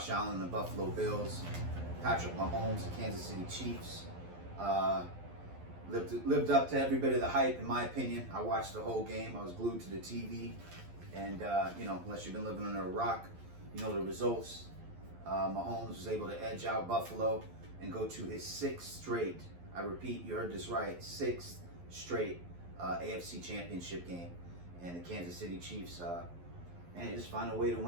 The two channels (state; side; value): late; left; 11 ms